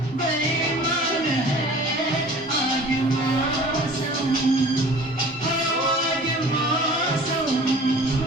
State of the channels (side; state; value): both; normal; correlation 0.45